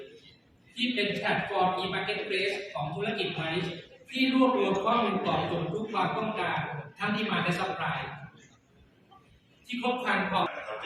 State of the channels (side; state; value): both; identical; correlation 1.00